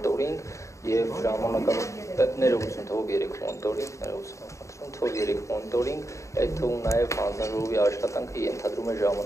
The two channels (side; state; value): right; late; 0.15 ms